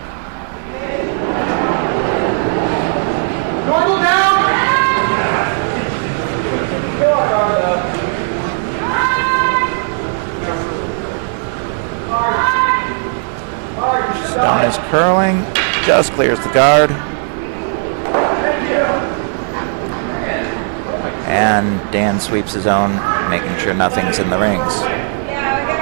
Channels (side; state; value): left; silent; 56 dB below the other